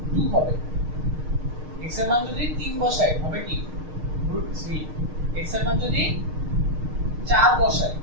হবে। x এর মান যদি 3 বসাই হবে কি √3। x এর মান যদি 4 বসাই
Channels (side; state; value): left; late; 6.5 ms